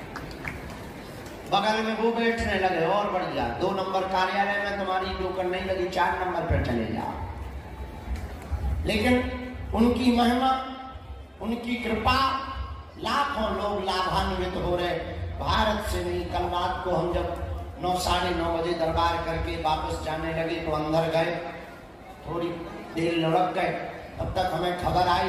बगल में वो बैठने लगे और बढ़ गया। 2 नंबर कार्यालय में तुम्हारी नौकर नहीं लगी, 4 नंबर पर चले जाओ। लेकिन उनकी महिमा, उनकी कृपा, लाखों लोग लाभान्वित हो रहे। भारत से नहीं, कल रात को हम जब 9 साढ़े 9 बजे दरबार करके वापस जाने लगे तो अंदर गए, थोड़ी देर लुढ़क गए। तब तक हमें खबर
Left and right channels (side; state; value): both; identical; correlation 1.00